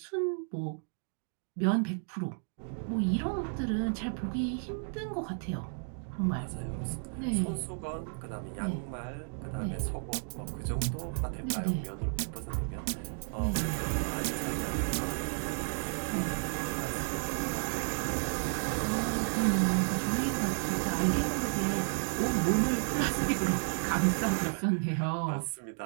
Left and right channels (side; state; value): left; silent; 56 dB below the other